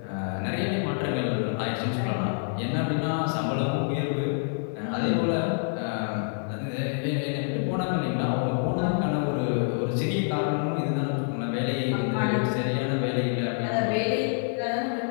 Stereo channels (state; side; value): silent; right; 60 dB below the other